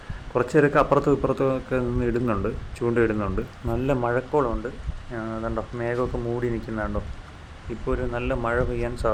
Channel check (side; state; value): both; identical; correlation 1.00